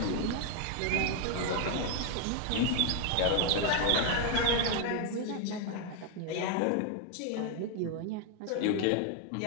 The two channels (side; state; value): both; different; correlation 0.01